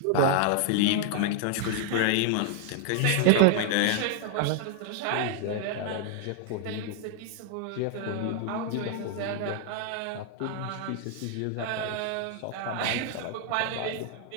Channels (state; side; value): different; both; correlation 0.00